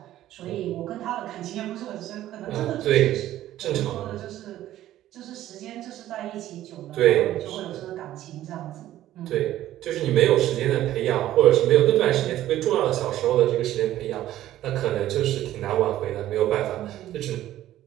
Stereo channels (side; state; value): left; quieter; 13.5 dB